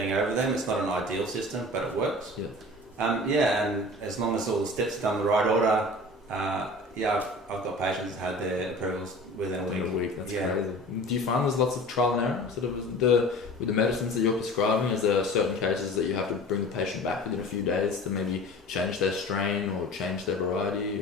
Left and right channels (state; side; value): normal; both; correlation 0.40